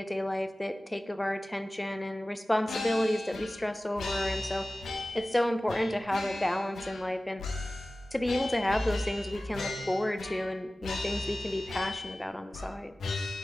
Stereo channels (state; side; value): normal; both; correlation 0.97